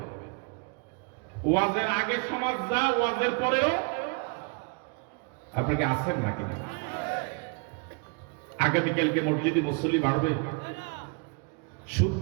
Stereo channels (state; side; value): quieter; left; 33.6 dB